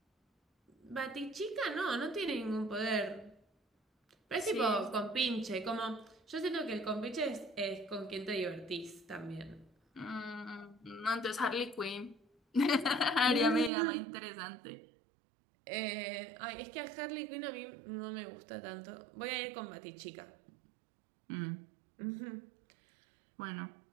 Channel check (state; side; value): drops out; left; at 13.7 s